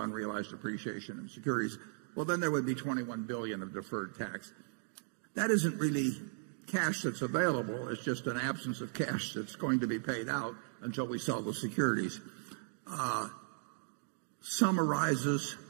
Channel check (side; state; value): left; silent; digital silence